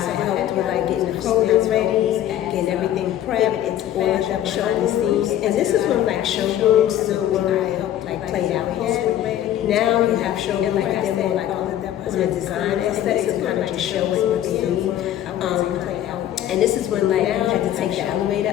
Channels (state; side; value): quieter; right; 11.8 dB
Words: with like getting the clothing ready, getting everything prepped, all of them showing the scenes. And this is when like showrooms still weren't like played out yet. Now you have showrooms like they're more like on the design aesthetic, to kind of just show what you see. And this is when like you had to take the